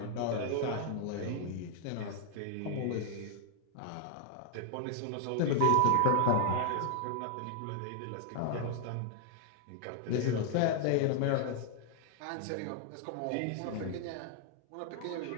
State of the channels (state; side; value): different; both; correlation 0.00